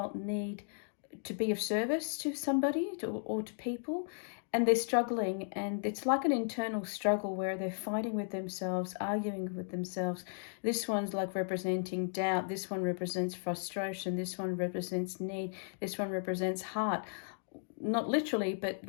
need to be of service to somebody or to people, and they're struggling, and it's like an internal struggle where they're fighting with themselves, arguing with themselves. This one's like representing doubt, this one represents frustration, this one represents need, this one represents heart. Not literally, but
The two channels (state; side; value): silent; right; digital silence